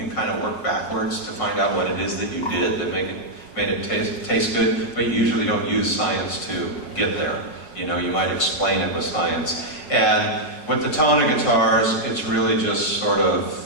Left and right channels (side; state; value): right; late; 5.6 ms